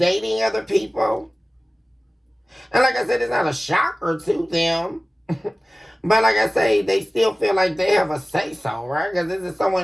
other people. And like I said, it's not a shocker to them. But like I say, they still feel like they have a say-so, right? Because this is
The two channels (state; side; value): normal; both; correlation 0.97